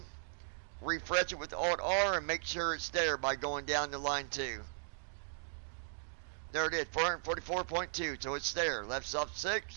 refresh it with Alt R, and make sure it's there by going down to line 2. There it is, 444.2. So it's there. Left soft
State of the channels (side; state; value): left; silent; digital silence